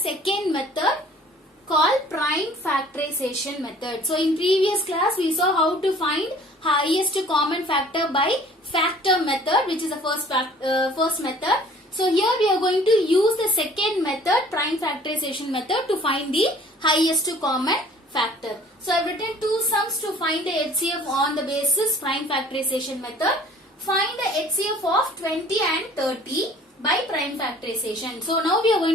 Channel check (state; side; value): normal; both; correlation 0.52